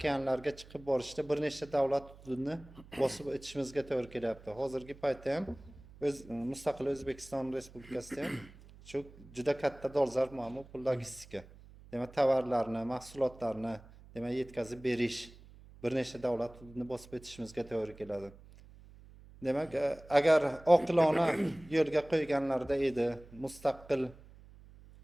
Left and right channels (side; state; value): right; noise; hum, 21 dB below the sound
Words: chiqib borishda bir nechta davlat hududini bosib o'tishimizga to'g'ri kelyapti. Hozirgi paytda ham mustaqil O'zbekiston Respublikasida ham shu juda katta dolzarb muammo bu logistika. Demak, tovarlarni, mahsulotlarni demak yetkazib berish bir nechta davlat hududini bosib o'tishimizga to'g'ri keladi. Demak, agar oqilona yo'lga qo'yganlarda edi, mustaqil